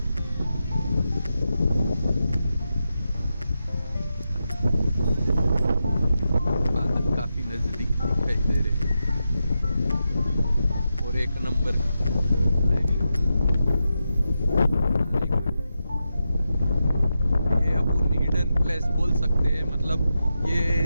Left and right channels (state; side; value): inverted; both; correlation -0.88